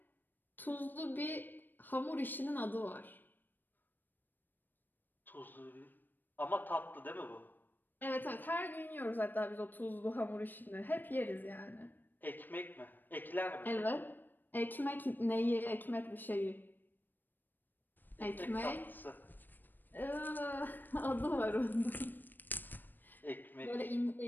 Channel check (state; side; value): late; right; 0.091 ms